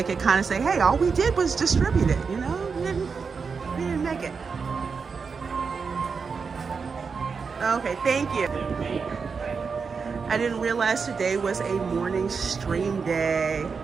could kind of say, hey, all we did was distribute it, you know? We didn't make it. Okay, thank you. I didn't realize today was a morning stream day.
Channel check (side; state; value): left; quieter; 5.4 dB